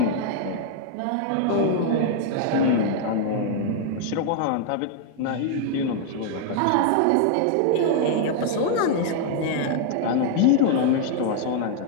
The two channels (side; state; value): both; different; correlation 0.00